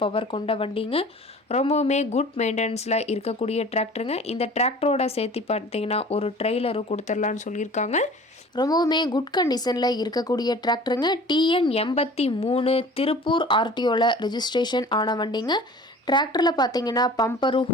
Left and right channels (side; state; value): both; normal; correlation 0.45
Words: பவர் கொண்ட வண்டிங்க. ரொம்பவுமே குட் மெயின்டெனன்ஸில் இருக்கக்கூடிய டிராக்டருங்க. இந்த டிராக்டரோட சேர்த்து பார்த்தீங்கன்னா ஒரு ட்ரெய்லரும் கொடுத்துடலான்னு சொல்லியிருக்காங்க. ரொம்பவுமே குட் கண்டிஷனில் இருக்கக்கூடிய டிராக்டருங்க. டிஎன் 83 திருப்பூர் ஆர்டிஓவில் ரெஜிஸ்ட்ரேஷன் ஆன வண்டிங்க. டிராக்டரில் பார்த்தீங்கன்னா பம்பரும்